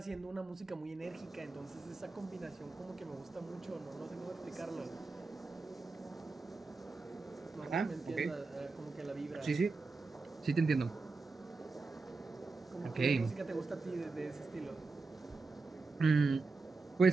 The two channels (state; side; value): quieter; left; 3.9 dB